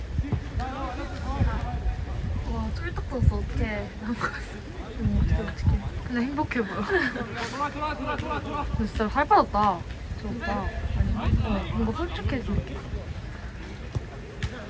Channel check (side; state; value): both; identical; correlation 1.00